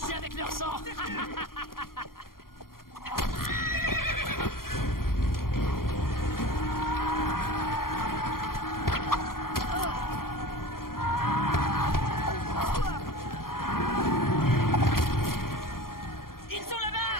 Avec leur sang. Ils sont là-bas!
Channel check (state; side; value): late; right; 0.92 ms